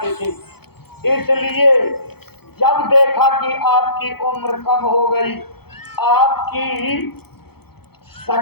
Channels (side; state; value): right; late; 0.96 ms